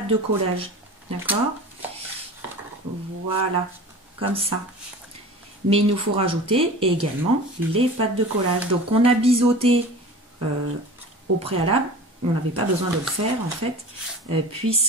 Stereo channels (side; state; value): both; normal; correlation 0.37